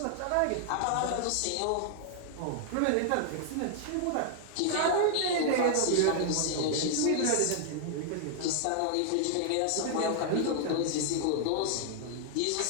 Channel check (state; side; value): different; both; correlation 0.00